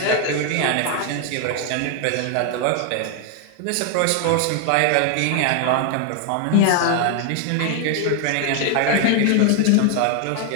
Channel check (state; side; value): different; both; correlation 0.00